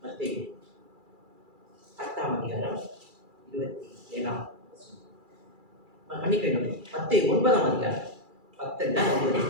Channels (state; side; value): late; left; 2.3 ms